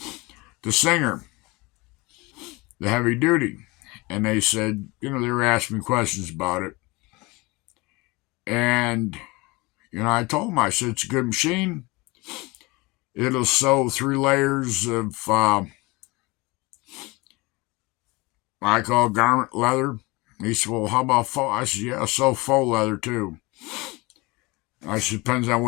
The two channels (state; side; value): quieter; right; 24.1 dB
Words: the singer, the heavy duty. And they said, they were asking me questions about it. And, I told them, I said, it's a good machine. It'll sew 3 layers of, I call garment leather. He said, well, how about faux? I said, yeah, sew faux leather too. I said, depends on